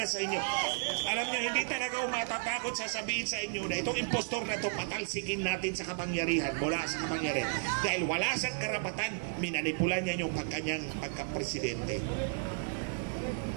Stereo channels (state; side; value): silent; left; digital silence